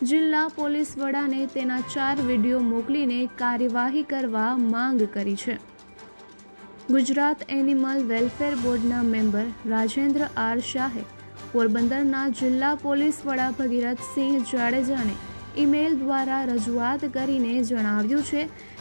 જિલ્લા પોલીસ વડાને તેના 4 વિડીયો મોકલીને કાર્યવાહી કરવા માંગ કરી છે। ગુજરાત એનિમલ વેલફેર બોર્ડના મેમ્બર રાજેન્દ્ર આર શાહે પોરબંદરના જિલ્લા પોલીસ વડા ભગીરથસિંહ જાડેજાને ઈમેલ દ્વારા રજૂઆત કરીને જણાવ્યું છે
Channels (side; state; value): both; inverted; correlation -1.00